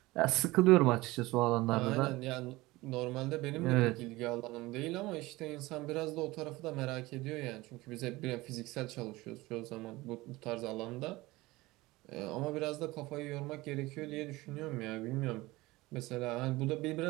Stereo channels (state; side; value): quieter; left; 20.3 dB